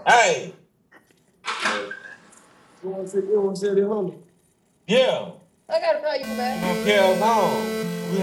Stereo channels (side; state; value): both; identical; correlation 1.00